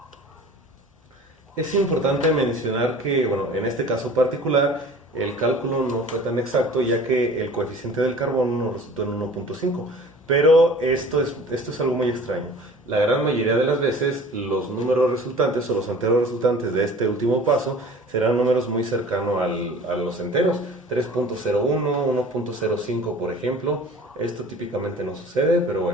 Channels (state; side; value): normal; both; correlation 0.44